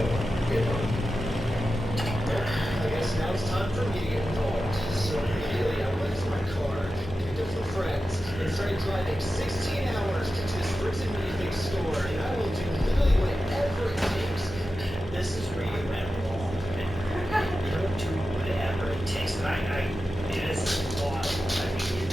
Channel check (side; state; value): both; normal; correlation 0.92